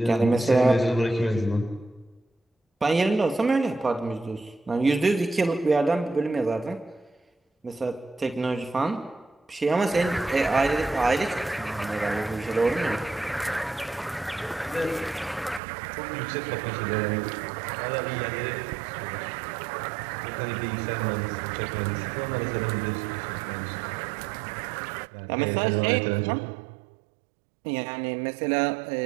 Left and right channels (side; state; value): left; drops out; at 15.6 s